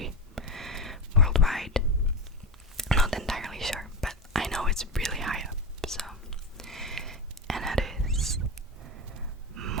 worldwide. Not entirely sure, but I know it's really high up. So, and that is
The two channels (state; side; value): normal; both; correlation 0.17